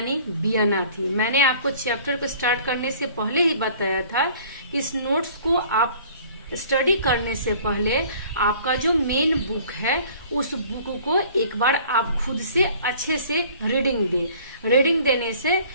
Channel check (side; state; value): both; inverted; correlation -0.51